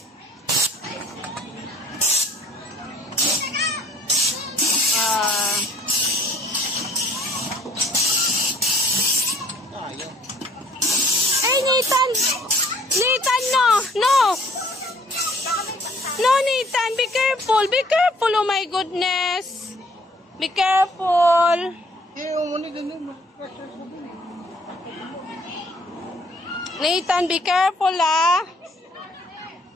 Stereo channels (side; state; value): both; normal; correlation 0.59